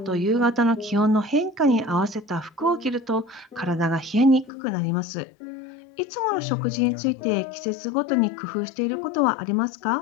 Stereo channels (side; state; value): right; drops out; at 4.5 s